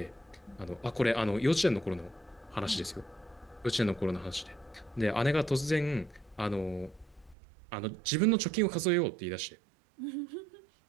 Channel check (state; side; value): drops out; left; at 7.4 s